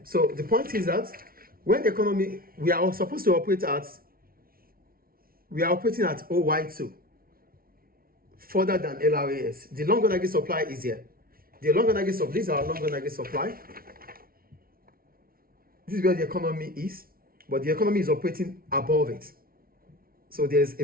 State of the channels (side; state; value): left; late; 0.43 ms